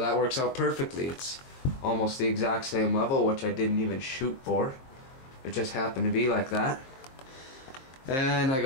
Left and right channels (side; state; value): right; late; 22 ms